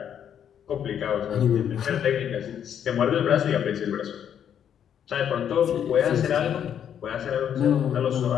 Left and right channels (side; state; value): right; quieter; 9.0 dB